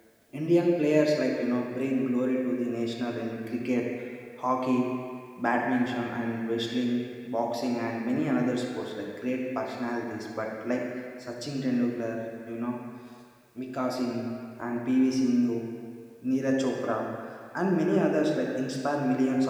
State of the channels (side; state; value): both; identical; correlation 1.00